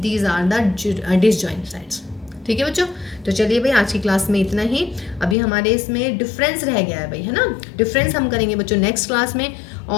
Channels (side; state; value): right; drops out; at 5.4 s